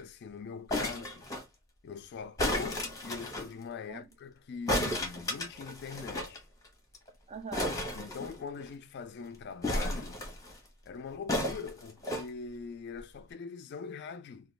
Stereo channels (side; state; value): both; normal; correlation 0.28